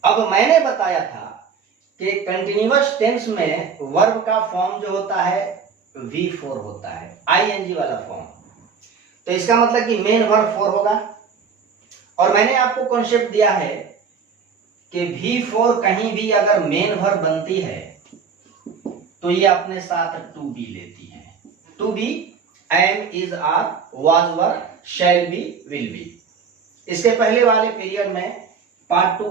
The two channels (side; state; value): left; quieter; 6.0 dB